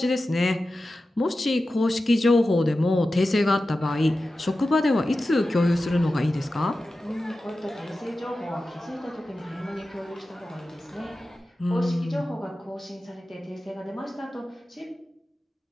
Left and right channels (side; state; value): both; normal; correlation 0.93